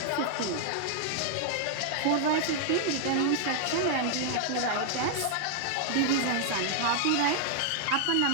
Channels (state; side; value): different; both; correlation 0.00